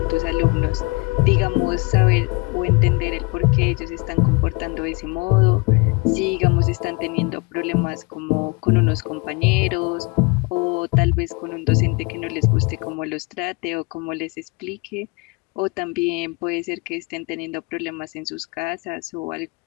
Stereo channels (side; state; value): right; quieter; 28.0 dB